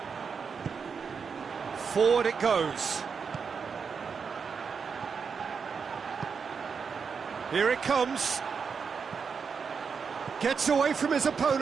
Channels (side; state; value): left; quieter; 5.9 dB